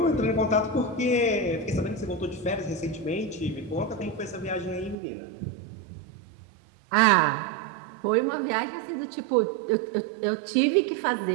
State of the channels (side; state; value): left; drops out; at 5.0 s